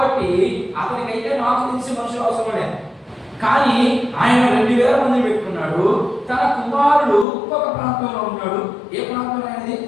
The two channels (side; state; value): right; drops out; at 7.2 s